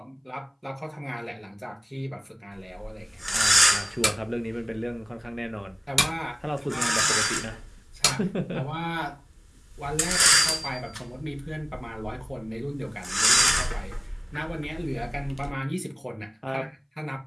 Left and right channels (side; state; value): both; identical; correlation 1.00